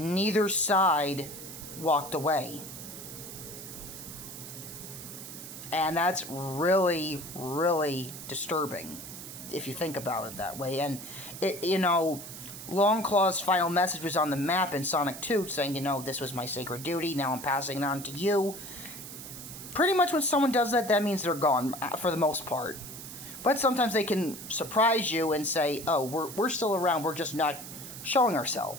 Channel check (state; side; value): noise; right; hiss, 11 dB below the sound